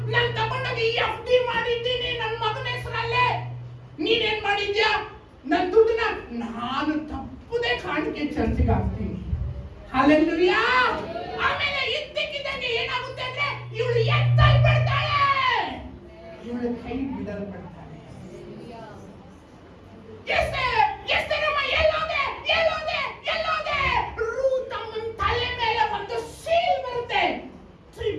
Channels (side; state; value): both; identical; correlation 1.00